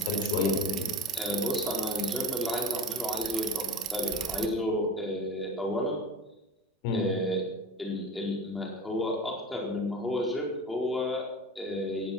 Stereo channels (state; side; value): normal; both; correlation 0.33